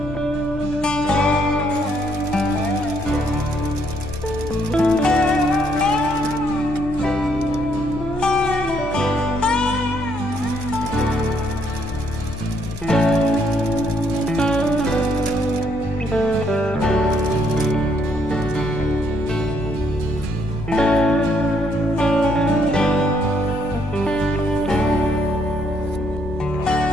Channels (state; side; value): noise; left; hum, 11 dB below the sound